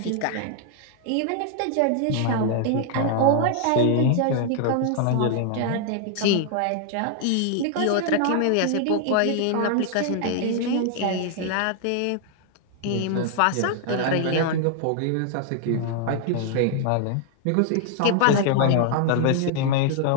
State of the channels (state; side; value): different; both; correlation 0.00